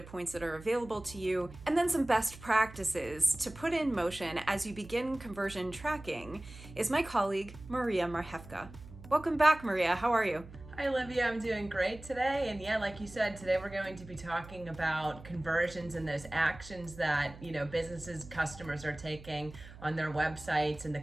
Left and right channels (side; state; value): right; noise; hum, 17 dB below the sound